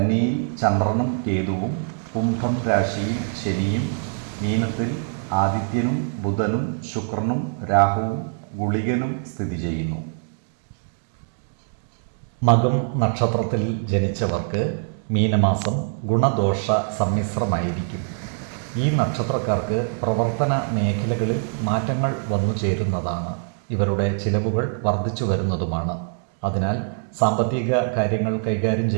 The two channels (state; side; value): silent; left; 63 dB below the other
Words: ചന്ദ്രനും കേതുവും, കുംഭം രാശിയിൽ ശനിയും, മീനത്തിൽ ആദിത്യനും ബുധനും ശുക്രനും രാഹുവും ഗുളികനും സ്ഥിതി ചെയ്യുന്നു. മകം നക്ഷത്രത്തിൽ ജനിച്ചവർക്ക് മീനമാസം ഗുണദോഷ സമ്മിശ്രമായിരിക്കും. ഈ നക്ഷത്രക്കാർക്ക് പ്രവർത്തന മേഖലകളിൽ മാറ്റങ്ങൾ വന്നു ചേരുന്നതാണ്. ഇവരുടെ ചിലവുകൾ വർദ്ധിച്ചു വരുന്നതുമാണ്. അതിനാൽ സാമ്പത്തിക കാര്യങ്ങൾ കൈകാര്യം